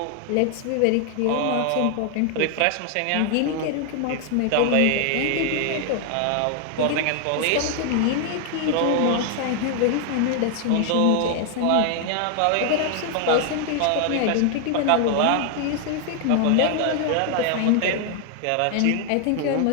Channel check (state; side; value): different; both; correlation 0.00